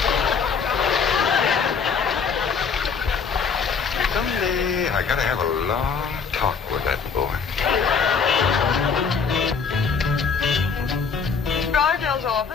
Someday I gotta have a long talk with that boy. Drysdale's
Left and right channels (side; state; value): right; quieter; 5.8 dB